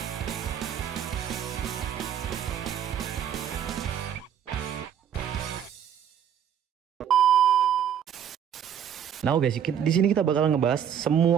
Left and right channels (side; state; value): left; quieter; 8.9 dB